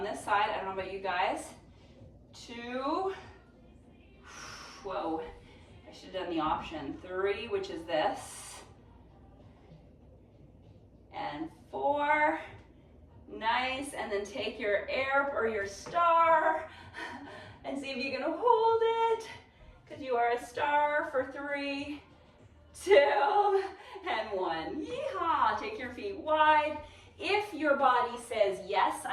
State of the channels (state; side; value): identical; both; correlation 1.00